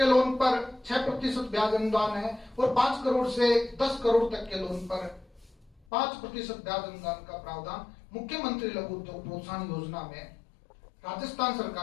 लोन पर 6% ब्याज अनुदान है, और 5 करोड़ से 10 करोड़ तक के लोन पर 5% ब्याज अनुदान का प्रावधान मुख्यमंत्री लघु उद्योग प्रोत्साहन योजना में राजस्थान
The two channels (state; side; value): drops out; right; at 5.8 s